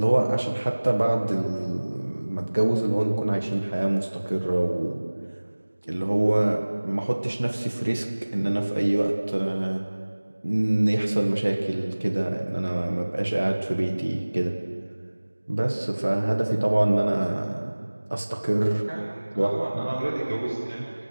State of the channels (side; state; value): both; inverted; correlation -1.00